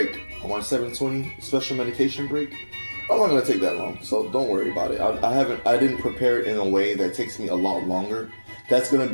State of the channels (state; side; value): inverted; both; correlation -1.00